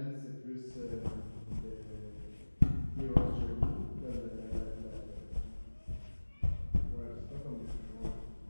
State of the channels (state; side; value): inverted; both; correlation -1.00